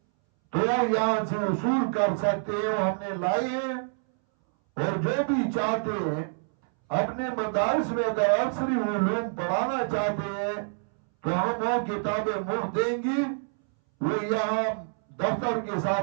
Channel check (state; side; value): silent; left; 60 dB below the other